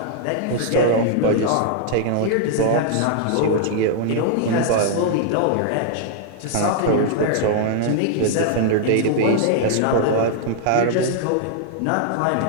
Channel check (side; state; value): both; different; correlation -0.01